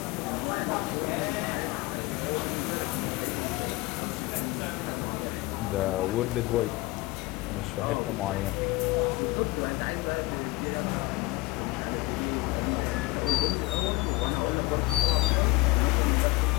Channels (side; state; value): right; quieter; 20.8 dB